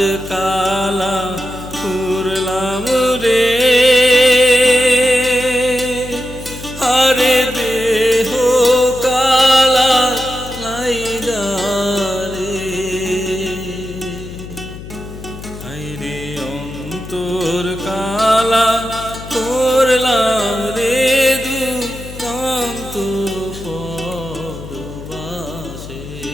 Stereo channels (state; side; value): noise; left; hum, 13 dB below the sound